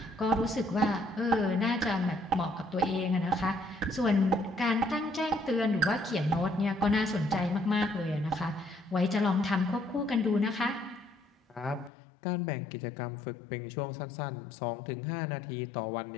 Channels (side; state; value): right; drops out; at 11.9 s